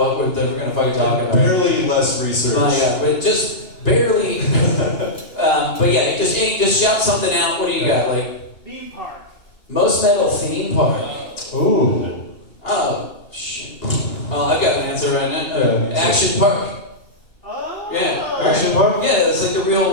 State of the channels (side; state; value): right; late; 2.8 ms